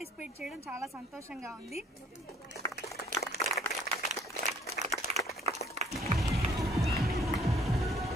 చేయడం చాలా సంతోషంగా ఉంది.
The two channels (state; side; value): normal; both; correlation 0.58